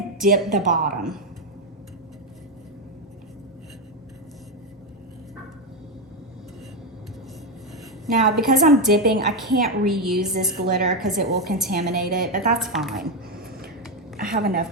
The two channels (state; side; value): normal; both; correlation 0.07